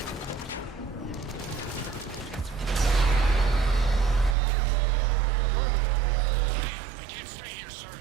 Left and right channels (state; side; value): drops out; left; at 4.4 s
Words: I can't stay here, sir.